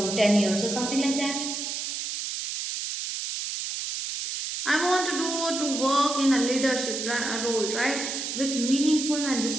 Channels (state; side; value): noise; right; hiss, 4 dB below the sound